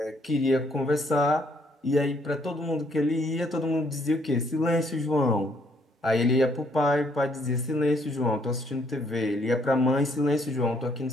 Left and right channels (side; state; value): both; normal; correlation 0.68